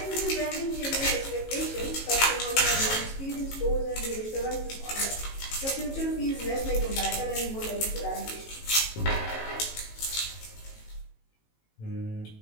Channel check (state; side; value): late; right; 18 ms